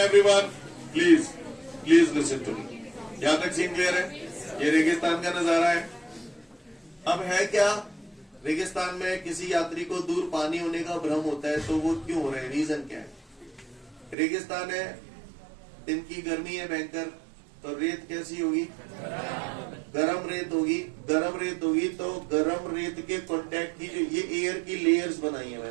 please listen to me. यहां तक सीन क्लियर है? ये रेगिस्तान का नजारा है। अब है क्या? रेगिस्तान में किसी यात्री को दूर पानी होने का भ्रम होता है, तो वो क्यों हो रहा है? रीजन क्या है? रेगिस्तान है, दिन की गर्मी है भयंकर, तो रेत कैसी होगी? गरम रेत होगी। गरम रेत होगी तो गरम रेत के कांटेक्ट की जो ये एयर की लेयर्स बनाई है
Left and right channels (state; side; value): drops out; left; at 14.2 s